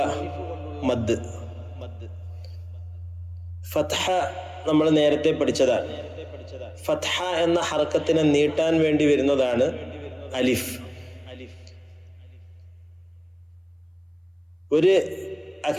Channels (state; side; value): identical; both; correlation 1.00